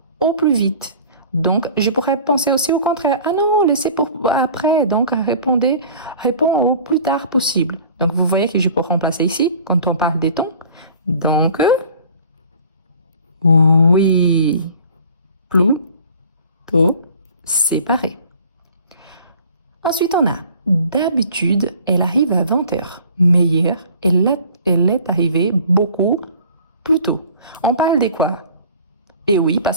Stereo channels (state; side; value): inverted; both; correlation -0.47